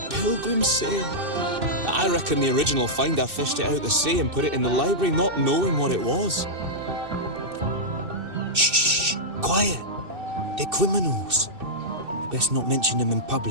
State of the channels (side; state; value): left; late; 2.6 ms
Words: Sail. I reckon the original finder fished it out the sea and put it in the library, not knowing what it was. Shh, quiet. They're criminals. You best not mention them in